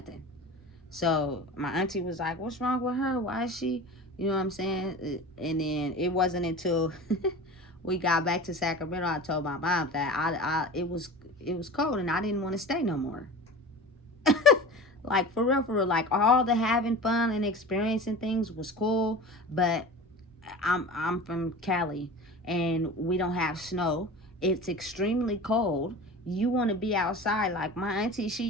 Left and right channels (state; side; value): normal; both; correlation 0.34